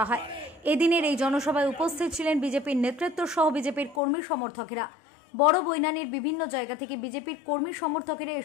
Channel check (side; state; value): right; drops out; at 4.0 s